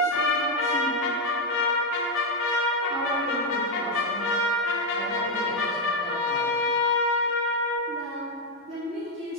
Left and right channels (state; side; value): normal; both; correlation 0.03